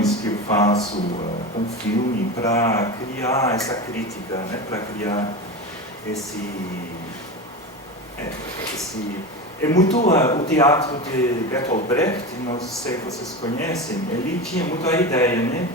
que eu faço com o filme para criar essa crítica, né? Para criar esse é muito o teatro de Bertolt Brecht, não sei se vocês conhecem, ele tinha muito a ideia, né?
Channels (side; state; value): both; normal; correlation 0.23